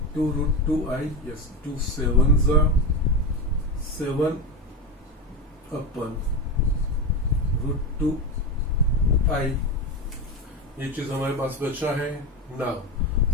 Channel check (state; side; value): normal; both; correlation 0.18